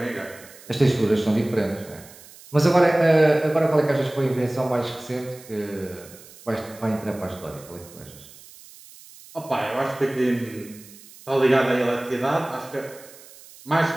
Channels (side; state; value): right; noise; hiss, 21 dB below the sound